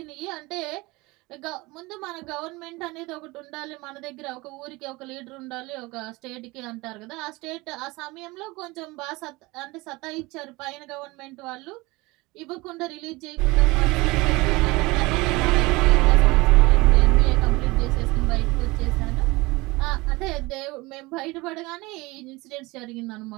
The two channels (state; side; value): quieter; left; 22.7 dB